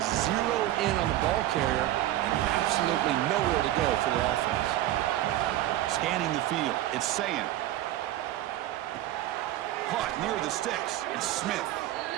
zeroed in on the ball carrier and absolutely nowhere to go for the offense. Scanning the field, it's Sayin. Caught near the sticks, it's Smith.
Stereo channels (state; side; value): quieter; left; 14.2 dB